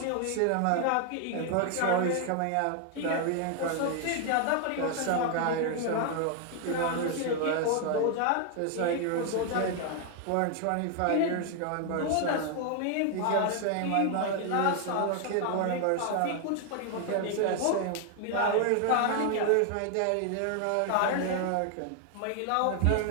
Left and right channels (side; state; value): both; different; correlation 0.00